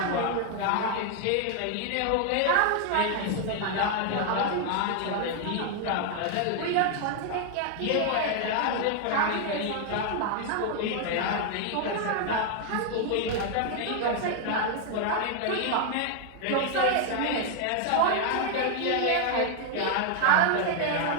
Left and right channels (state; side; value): different; both; correlation 0.00